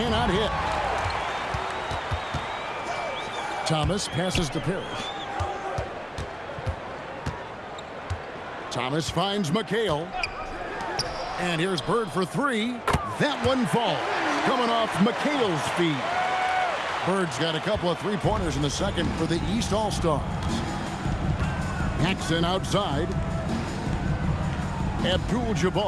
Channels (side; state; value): both; identical; correlation 1.00